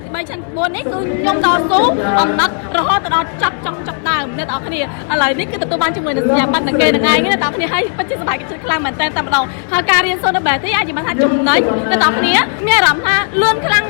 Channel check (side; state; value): right; silent; 57 dB below the other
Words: ទី3ឆ្នាំទី4នេះគឺខ្ញុំតស៊ូអំណត់រហូតដល់ចប់ដើមអ្នកទាំងគ្នាឥឡូវនេះគឺទទួលបានជាមួយនឹងសញ្ញាបត្រនឹងគេនឹងឯងអ្នកទាំងគ្នាហើយពិតជាសប្បាយចិត្តខ្លាំងមែនតើតែម្ដងហើយការរៀនសូត្រនៅ BETI អាចនិយាយបានថាចំណេញអ្នកទាំងគ្នាមានអារម្មណ៍ថាលឿនខ្លាំង